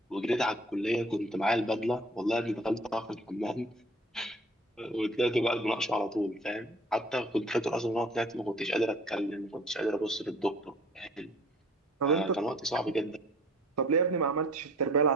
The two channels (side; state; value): both; normal; correlation 0.51